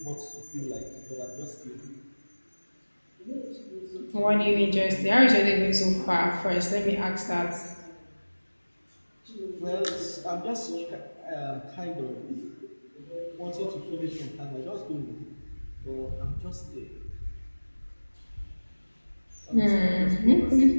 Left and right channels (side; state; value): both; inverted; correlation -1.00